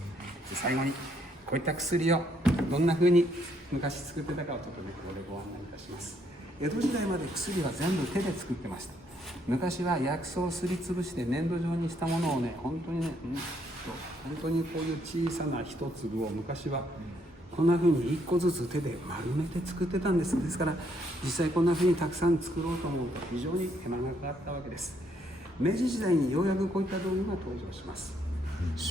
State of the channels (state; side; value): normal; both; correlation 0.71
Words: 最後にこういった薬をどんなふうに昔作ってたかをちょっとねここでご案内いたします。江戸時代まで薬は全部手で作ってました。昔は薬草をすりつぶして粘土状にしたものをね、本当にね、本当にこういう小さな一粒を昔はこんな風に一個ずつ手で丸めて作ってたんです。ですから実際こんな風にたくさん作ろうと思うと非常に手間がかかったわけです。明治時代にようやくこういった道具が登場します。